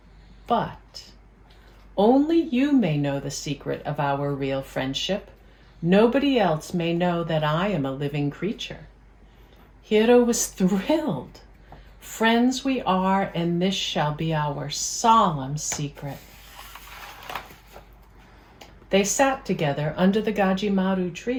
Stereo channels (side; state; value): both; identical; correlation 1.00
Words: but only you may know the secret of our real friendship. Nobody else may know that I am a living creature." Hiro was thrilled. "Friends we are, and this shall be our solemn secret." They sat together under the Gajimaru